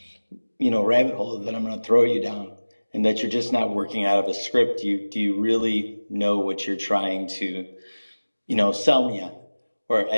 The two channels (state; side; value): inverted; both; correlation -1.00